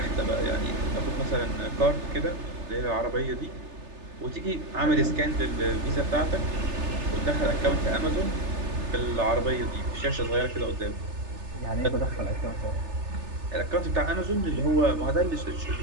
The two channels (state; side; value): late; left; 3.3 ms